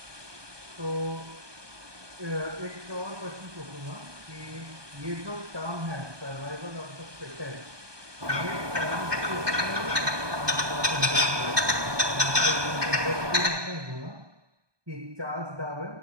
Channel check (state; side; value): late; left; 1.2 ms